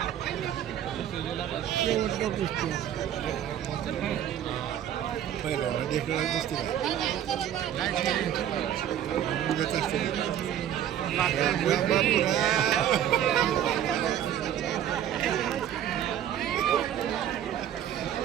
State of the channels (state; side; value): quieter; left; 10.5 dB